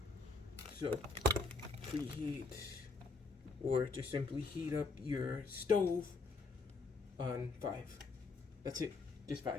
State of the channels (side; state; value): right; quieter; 3.9 dB